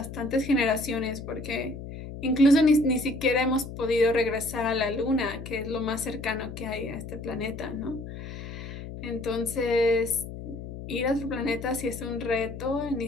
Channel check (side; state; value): left; noise; hum, 10 dB below the sound